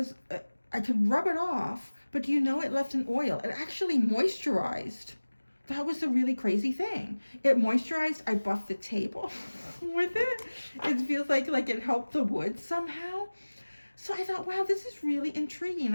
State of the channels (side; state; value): both; inverted; correlation -1.00